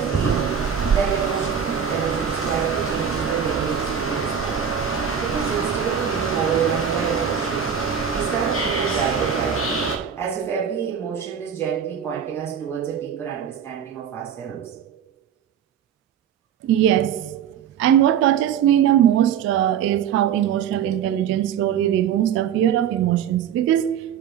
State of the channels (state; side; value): quieter; left; 8.2 dB